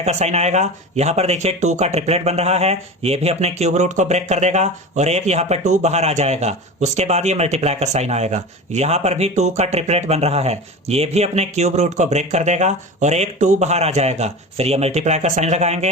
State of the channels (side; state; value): both; normal; correlation 0.30